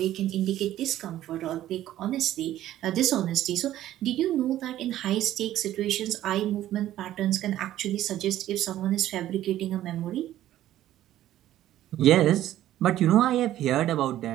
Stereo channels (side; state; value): left; quieter; 13.2 dB